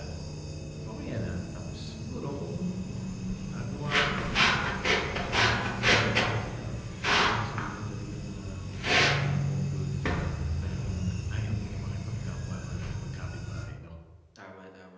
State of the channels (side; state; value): both; identical; correlation 1.00